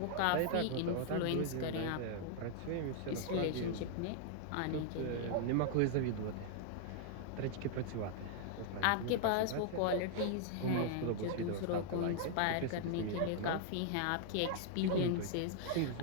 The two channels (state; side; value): different; both; correlation 0.00